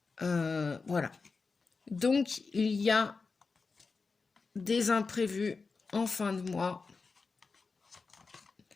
Voilà. Donc, il y a des imprévus en fin de mois,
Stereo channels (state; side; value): quieter; right; 4.5 dB